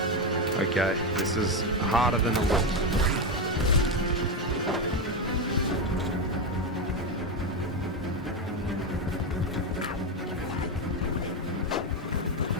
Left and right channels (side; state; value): both; normal; correlation 0.10